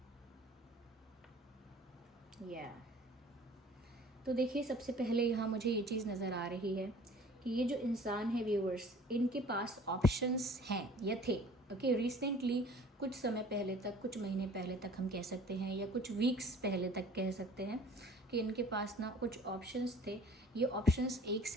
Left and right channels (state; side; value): normal; both; correlation 0.48